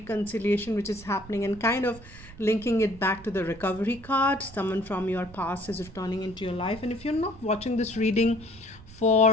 which is happening, and kind of linking it back to the recovery card. Someone from your past is returning into your life. And if you're not watching this reading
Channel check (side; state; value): right; noise; rumble, 19 dB below the sound